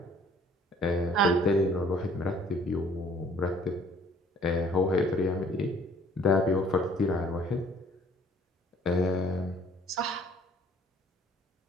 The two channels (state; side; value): normal; both; correlation 0.57